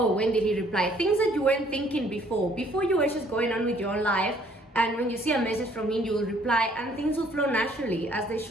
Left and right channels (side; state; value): both; normal; correlation 0.62